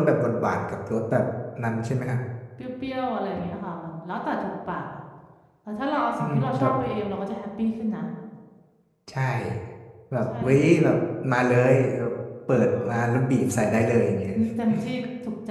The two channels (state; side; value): identical; both; correlation 1.00